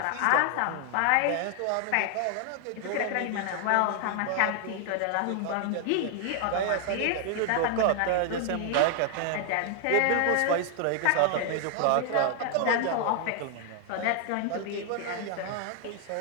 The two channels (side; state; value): both; different; correlation 0.00